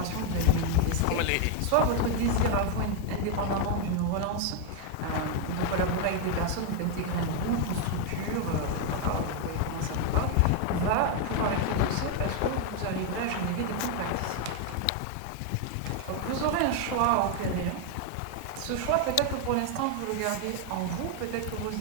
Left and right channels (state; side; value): different; both; correlation 0.01